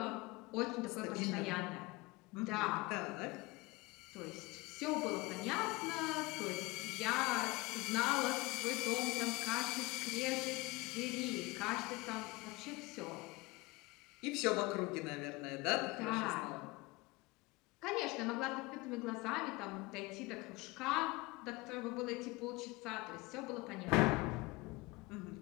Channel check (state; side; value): quieter; right; 23.4 dB